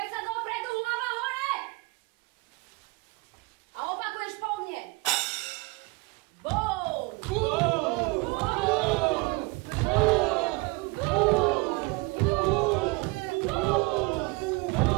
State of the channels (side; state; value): left; quieter; 26.5 dB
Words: sa dopredu, hlava hore! A opakuješ po mne. Boum!